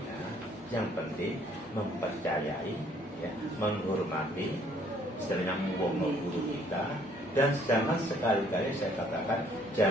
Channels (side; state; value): both; normal; correlation 0.62